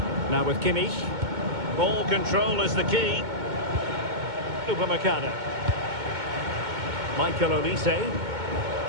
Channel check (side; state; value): left; late; 2.2 ms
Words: Now with Kimmich. Ball control is the key. Upamecano. Michael Olise.